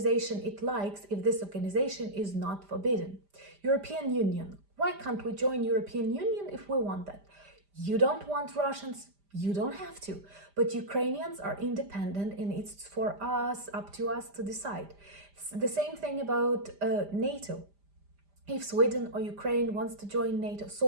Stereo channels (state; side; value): late; left; 5.0 ms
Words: it likes if this organization is not forbidden? European Union. Why can't we join European Union if we want that? You don't want Russians, you don't have to. But Ukrainians are independent and it's for us, up to us to decide. It's the same thing about NATO. If Sweden or Ukraine wants to join NATO, so